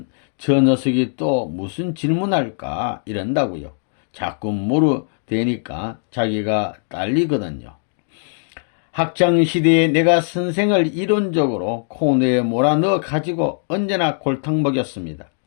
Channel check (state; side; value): silent; right; digital silence